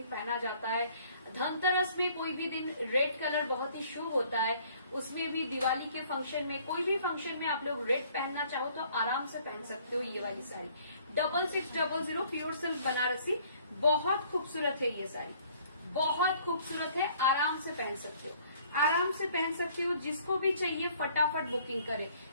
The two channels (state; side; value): inverted; both; correlation -0.58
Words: पहना जाता है, धनतेरस में कोई भी दिन रेड कलर बहुत ही शुभ होता है, उसमें भी दिवाली के फंक्शन में, कोई भी फंक्शन में आप लोग रेड पहनना चाहो तो आराम से पहन सकते हो ये वाली साड़ी। 6600 प्योर सिल्क बनारसी, बहुत खूबसूरत है ये साड़ी, बहुत खूबसूरत है, आराम से पहन सकते हो, आराम से पहन सकते हो। जिसको भी चाहिए फटाफट बुकिंग करें।